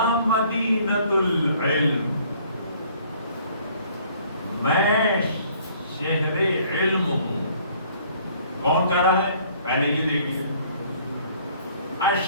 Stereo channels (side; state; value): both; inverted; correlation -0.58